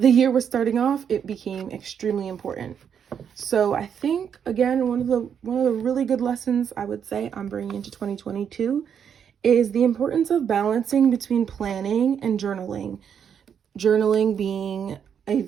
the year was starting off, it became extremely important. So I think, again, one of the really good lessons I would say I'm bringing into 2022 is the importance of balancing between planning and journaling. Journaling being a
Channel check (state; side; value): quieter; left; 7.9 dB